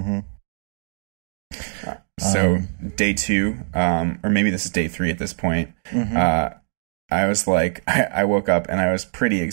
So day 2, or maybe this is day 3 at this point, mm-hmm. I was like, I woke up and I was pretty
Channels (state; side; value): silent; left; 64 dB below the other